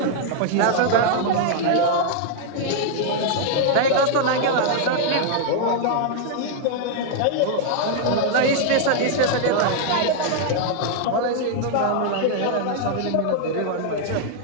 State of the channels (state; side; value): different; both; correlation -0.01